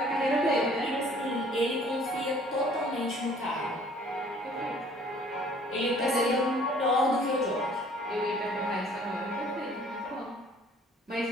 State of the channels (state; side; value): normal; both; correlation 0.55